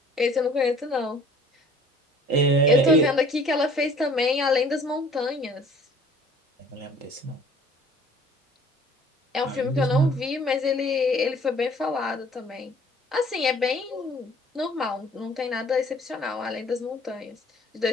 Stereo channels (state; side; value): normal; both; correlation 0.53